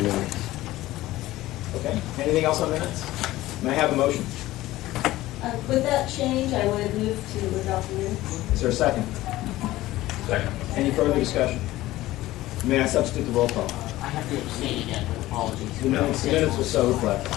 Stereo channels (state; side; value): quieter; right; 16.7 dB